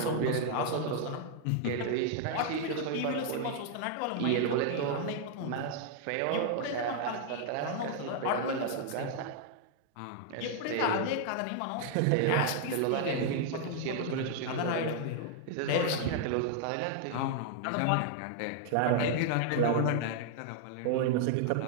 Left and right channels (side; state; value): both; different; correlation 0.00